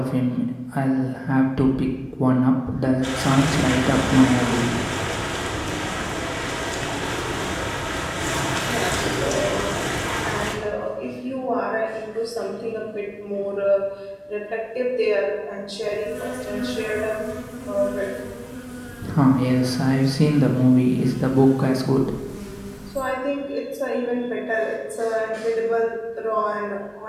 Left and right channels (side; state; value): both; identical; correlation 1.00